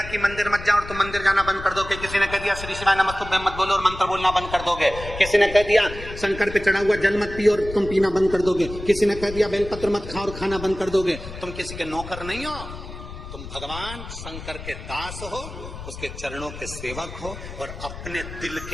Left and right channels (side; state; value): left; noise; rumble, 11 dB below the sound